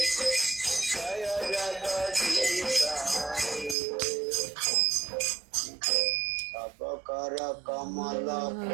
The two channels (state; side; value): drops out; left; at 3.8 s